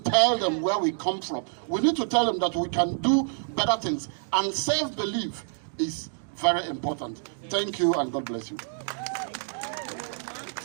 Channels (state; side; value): silent; left; digital silence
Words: them where we come from. We need to tell them that we can do better things. And self-belief is very important. Thank you, and God bless you.